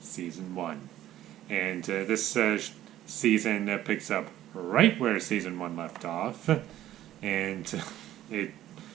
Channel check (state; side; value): quieter; left; 13.1 dB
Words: Season 1. And this season picks up right where Season 1 left off. And it